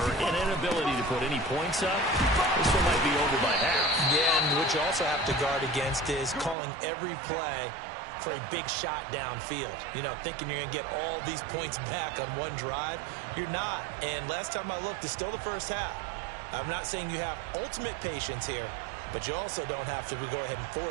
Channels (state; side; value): drops out; left; at 6.6 s